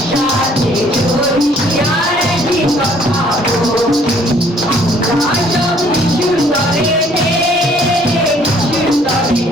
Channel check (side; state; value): both; normal; correlation 0.60